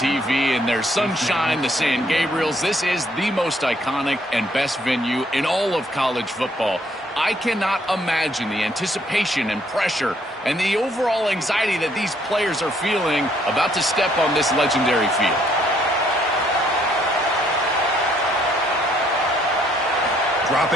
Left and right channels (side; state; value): both; normal; correlation 0.67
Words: and there's sunshine, the San Gabriels. This is the most iconic and best venue in all of college football. I cannot imagine the anticipation and pressure and the overall anxiety that these players are feeling about to step on this legendary field.